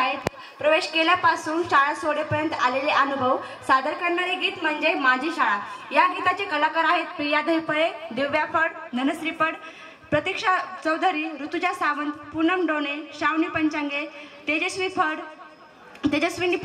प्रवेश केल्यापासून शाळा सोडेपर्यंत आलेले अनुभव सादर करणारे गीत म्हणजे माझी शाळा। या गीताचे कलाकार आहेत प्रिया धैपळे, दिव्या फड, धनश्री फड, प्रतीक्षा चौधरी, ऋतुजा सावंत, पूनम डोणे, श्रावणी पंचांगे, तेजस्विनी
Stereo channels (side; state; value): both; identical; correlation 1.00